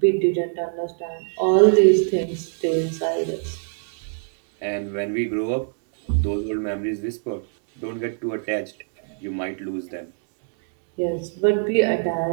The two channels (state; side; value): silent; left; digital silence